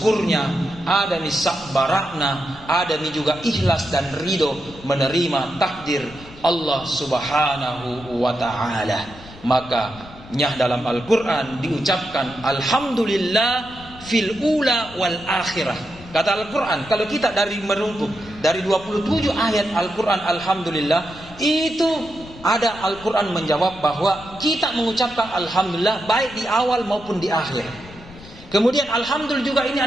ada nih sabarakna, ada nih juga ikhlas dan ridho menerima takdir Allah subhanahu wa ta'ala. Maka nyah dalam Al-Quran diucapkan alhamdulillah fil ula wal akhirah. Kata Al-Quran, kalau kita dari merungkuk dari 27 ayat Al-Quran alhamdulillah, itu ada Al-Quran menjawab bahwa kita mengucapkan alhamdulillah baik di awal maupun di akhir. Kemudian alhamdulillah juga ini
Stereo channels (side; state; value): left; noise; rumble, 19 dB below the sound